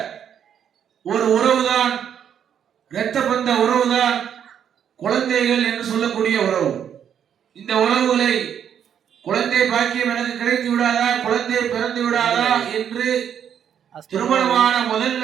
ஒரு உறவுதான், இரத்த பந்த உறவுதான் குழந்தைகள் என்று சொல்லக்கூடிய உறவு. இந்த உறவுகளை குழந்தை பாக்கியம் எனக்கு கிடைத்து விடாதா, குழந்தை பிறந்து விடாதா என்று திருமணமான முதல்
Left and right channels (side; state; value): left; quieter; 8.8 dB